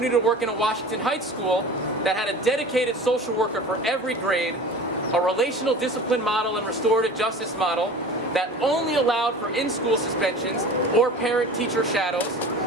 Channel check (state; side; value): normal; both; correlation 0.38